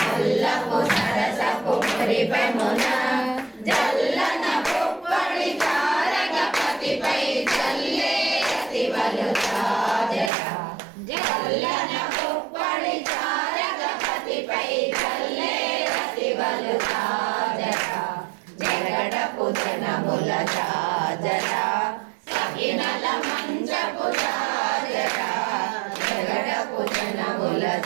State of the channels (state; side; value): drops out; left; at 10.3 s